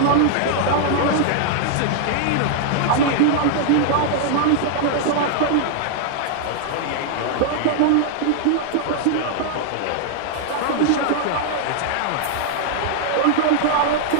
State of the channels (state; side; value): different; both; correlation -0.01